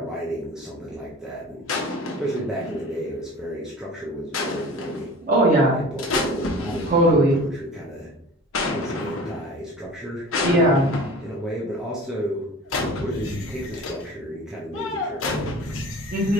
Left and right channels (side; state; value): both; normal; correlation 0.39